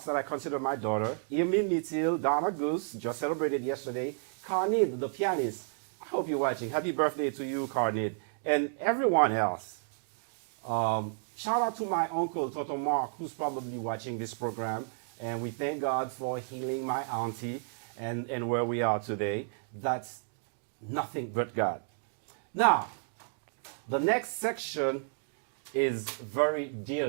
that I consider my daughter, Emile Mitil, Donna Goose, just celebrated yesterday, Carnid, the pianist. I hope you're watching. Happy birthday to you, Carnid, and everyone else. Shout out to my uncle, Toto Mark, who's probably watching this program. And we thank God for healing my auntie and where we are today. That's nothing but God. Now, the next section is very dear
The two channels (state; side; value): silent; left; digital silence